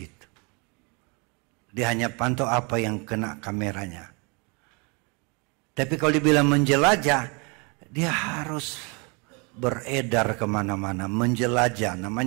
Dia hanya pantau apa yang kena kameranya. Tapi kalau dibilang menjelajah, dia harus beredar kemana-mana. Menjelajah,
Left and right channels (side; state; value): left; quieter; 31.7 dB